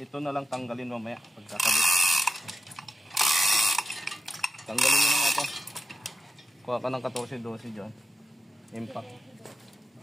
na lang tanggalin mamaya pagkakabit. Tanggalin mo na nga ito. Kuha ka ng 14-12 dyan. Impact.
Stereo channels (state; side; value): normal; both; correlation 0.91